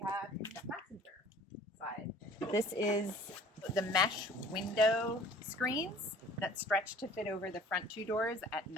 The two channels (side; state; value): both; normal; correlation 0.50